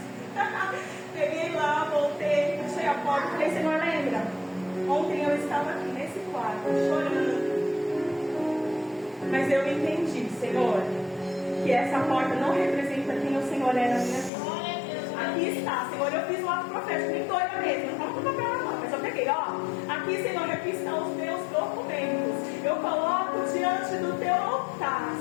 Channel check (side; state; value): right; drops out; at 14.3 s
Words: Peguei lá, voltei, fechei a porta, falei, Senhor, lembra? Ontem eu estava aqui nesse quarto, chorando. Mas eu entendi, Senhor, que essa porta não representa quem o Senhor é na minha vida. Aqui está, Senhor, eu fiz um ato profético, nem doida mesmo, não estava com papel na mão, mas eu peguei, ó. Aqui, Senhor, aqui estão os meus documentos. Eu coloco diante do teu altar,